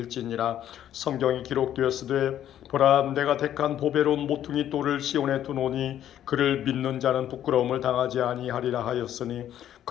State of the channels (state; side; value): quieter; right; 11.1 dB